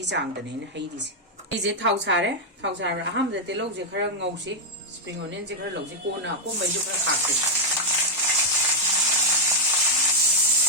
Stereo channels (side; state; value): both; normal; correlation 0.01